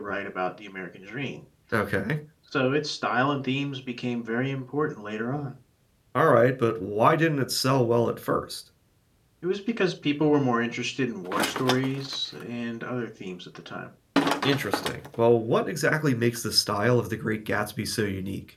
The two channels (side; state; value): both; identical; correlation 1.00